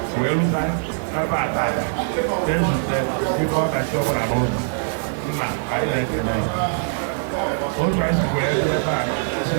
wee rute ebe ata ezute ibe ọkachi ọbụla n'ụzọ nna anyị na-ekele otu anyị si wee ebe a si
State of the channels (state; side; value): silent; left; digital silence